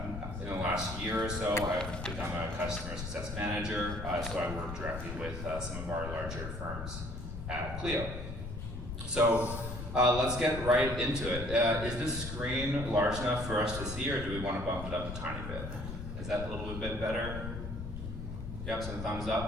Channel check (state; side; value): noise; left; rumble, 7 dB below the sound